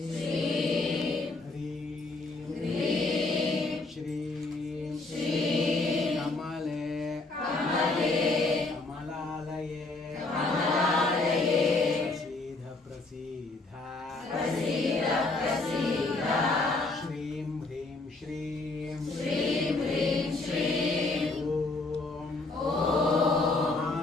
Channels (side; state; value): right; quieter; 3.3 dB